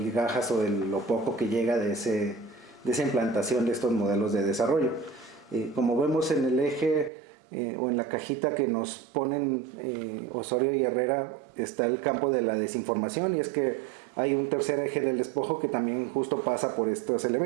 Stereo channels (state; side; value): drops out; left; at 7.1 s